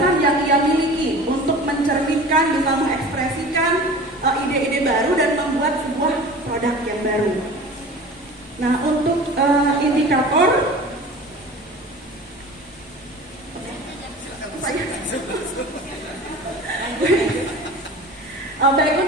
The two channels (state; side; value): normal; both; correlation 0.38